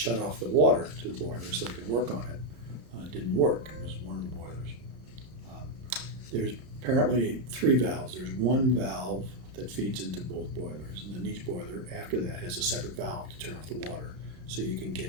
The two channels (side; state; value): left; late; 31 ms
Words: off the water to the boiler so they could work on it didn't work. It was one of the boilers. There's apparently 3 valves. There's one valve that feeds into both boilers, and then each boiler after that has a separate valve to turn off the water so you can